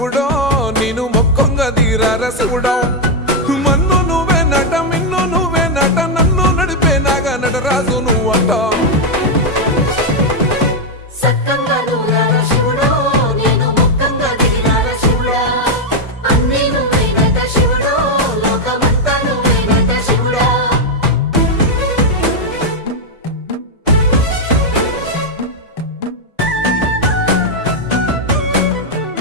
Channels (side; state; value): both; normal; correlation 0.01